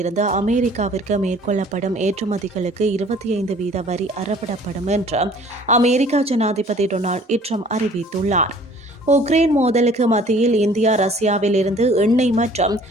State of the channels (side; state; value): both; normal; correlation 0.53